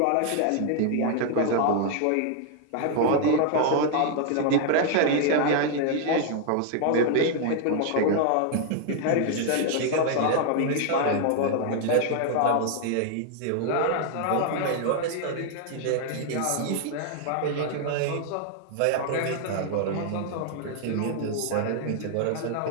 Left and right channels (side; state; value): both; different; correlation 0.00